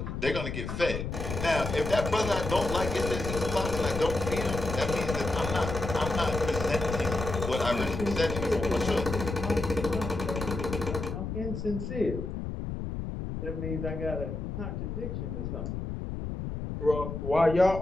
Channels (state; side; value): noise; left; rumble, 5 dB below the sound